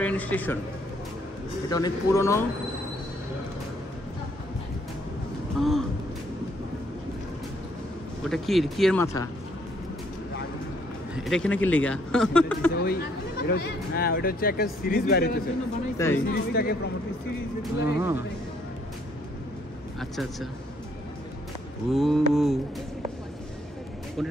স্টেশন। এটা অনেক পুরনো। ওটা কি এর মাথা? এটা এখানে কি লেগা? ওই হ্যাঁ, ওটা হচ্ছে একটা সিরিজ বাইরে হচ্ছে, তাই সিরিজটাকে প্রমোট সিরিজ। আচ্ছা আচ্ছা, ও কোনটা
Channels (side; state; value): both; normal; correlation 0.67